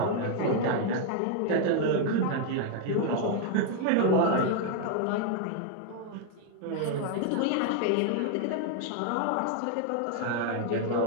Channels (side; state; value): both; different; correlation 0.00